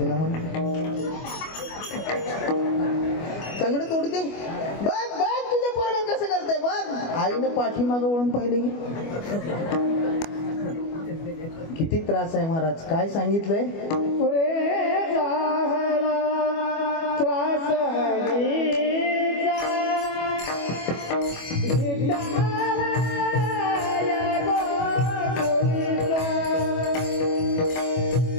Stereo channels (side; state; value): right; late; 25 ms